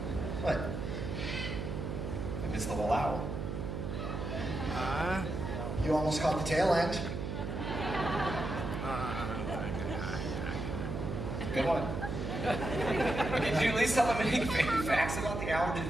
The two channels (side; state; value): right; noise; hum, 4 dB below the sound